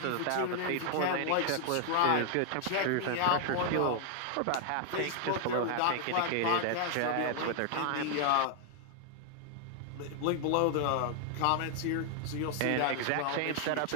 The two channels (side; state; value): both; different; correlation 0.00